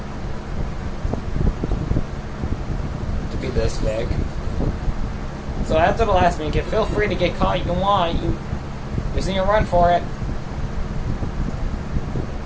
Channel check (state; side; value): identical; both; correlation 1.00